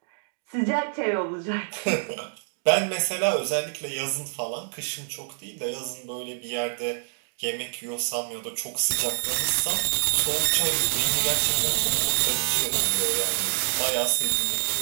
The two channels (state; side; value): silent; left; digital silence